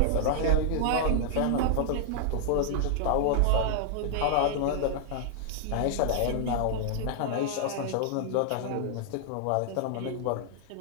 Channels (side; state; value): both; different; correlation 0.00